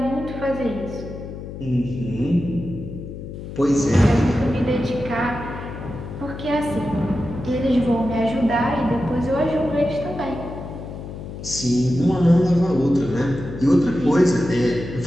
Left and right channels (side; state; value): left; noise; hum, 10 dB below the sound